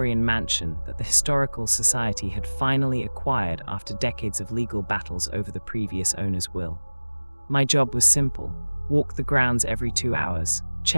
mansion that the Historical Society had finally acquired after decades of legal battles over the previous owner's will. My job was simple: walk the grounds every 2 hours,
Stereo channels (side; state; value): both; inverted; correlation -1.00